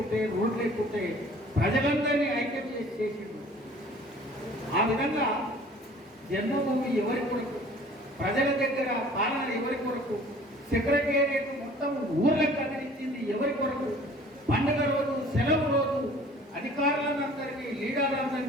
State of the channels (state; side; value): normal; both; correlation 0.50